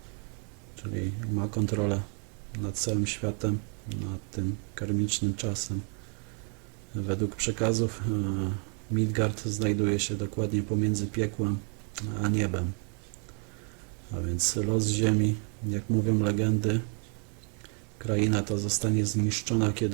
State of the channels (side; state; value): left; quieter; 34.7 dB